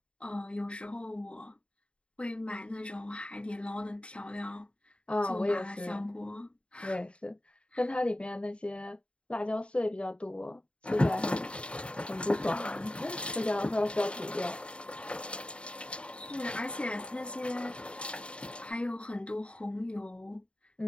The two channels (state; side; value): late; right; 0.057 ms